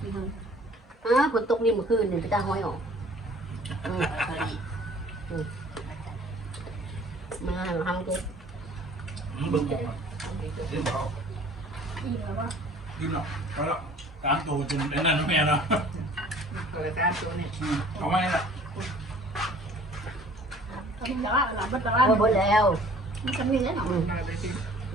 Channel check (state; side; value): normal; both; correlation 0.51